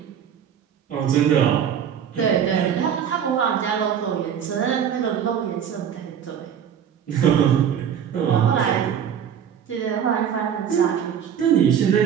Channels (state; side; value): quieter; left; 8.6 dB